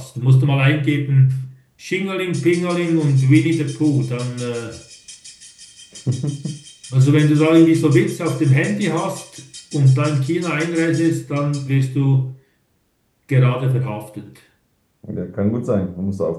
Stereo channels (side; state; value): both; identical; correlation 1.00